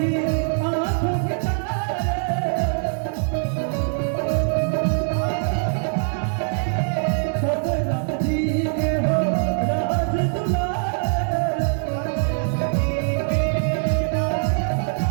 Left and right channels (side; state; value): left; silent; digital silence